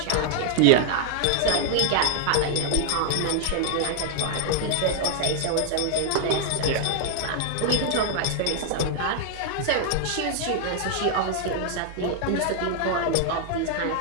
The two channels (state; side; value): different; both; correlation -0.01